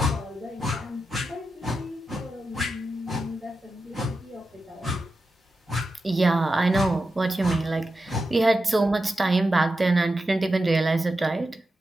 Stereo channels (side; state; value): both; normal; correlation 0.90